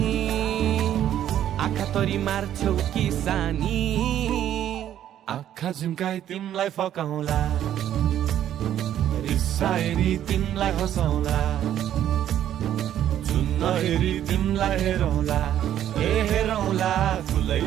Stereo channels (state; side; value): quieter; left; 11.1 dB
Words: आँखातरी मार्छौ कि सानी आँखा झुम्काई तिमलाई फकाउँला रिसाएरी तिमलाई हँसाउँला जुन नहेरी तिमलाई हेरौँला हेरौँला फुलै